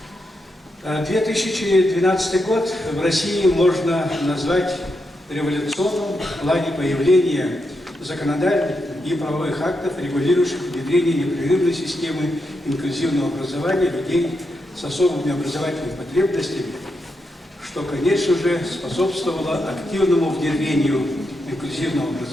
2012 год в России можно назвать революционным в плане появления законодательных и правовых актов, регулирующих внедрение непрерывной системы инклюзивного образования людей с особыми образовательными потребностями, что, конечно же, способствовало активному внедрению инклюзивного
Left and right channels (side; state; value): both; normal; correlation 0.84